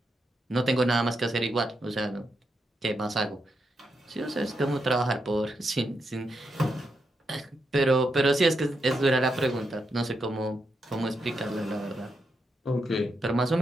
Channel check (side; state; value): both; normal; correlation 0.83